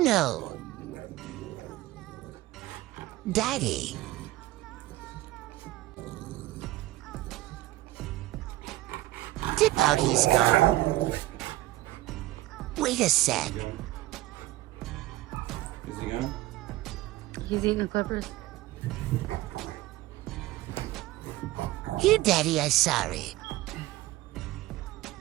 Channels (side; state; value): left; quieter; 17.0 dB